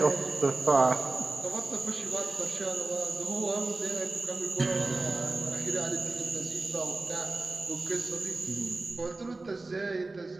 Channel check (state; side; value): quieter; left; 3.2 dB